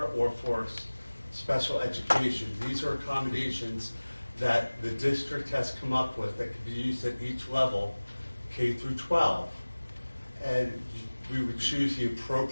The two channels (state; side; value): inverted; both; correlation -1.00